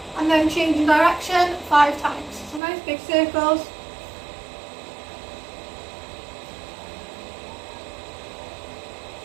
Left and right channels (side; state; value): left; drops out; at 2.6 s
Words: And then changing direction 5 times. So nice big circles.